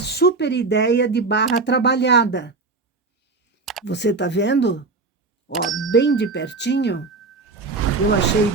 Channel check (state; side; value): quieter; left; 3.9 dB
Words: ideia de barra trabalhada. Você tá vendo? Ó, bem de pertinho, eu achei